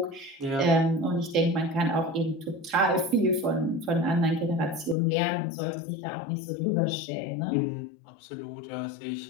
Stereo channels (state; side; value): drops out; right; at 5.0 s